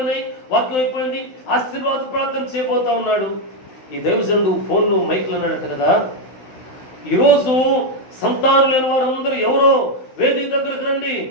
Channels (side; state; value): right; late; 16 ms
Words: వాక్యం అయిపోయింది, ఆశీర్వాద ప్రార్థన చేయబోతా ఉన్నాడు. ఈ దైవజనుడు ఫోన్లో మైకులు అన్నాడట కదా, ఈరోజు సంతానం లేని వారందరూ ఎవరో వేదిక దగ్గరికి రండి,